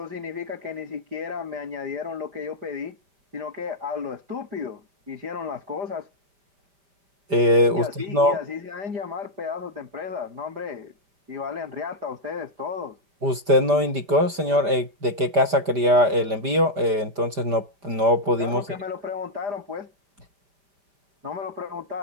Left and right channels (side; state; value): left; late; 5.0 ms